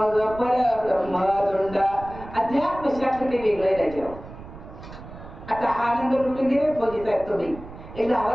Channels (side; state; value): right; noise; rumble, 15 dB below the sound